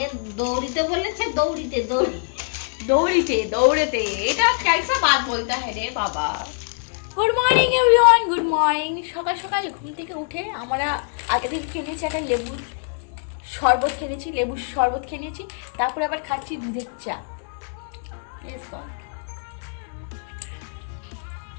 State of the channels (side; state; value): right; silent; 62 dB below the other